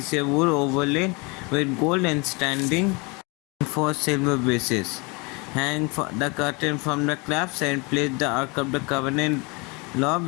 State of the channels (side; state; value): right; quieter; 28.8 dB